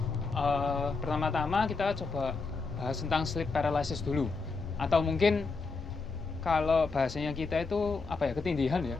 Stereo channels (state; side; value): quieter; right; 4.2 dB